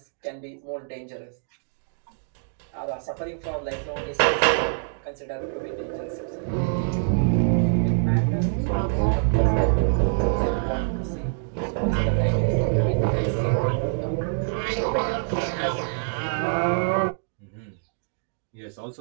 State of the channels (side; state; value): left; silent; digital silence